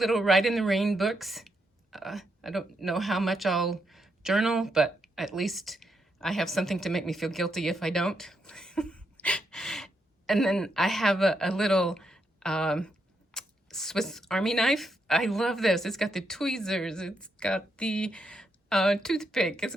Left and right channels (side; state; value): both; normal; correlation 0.80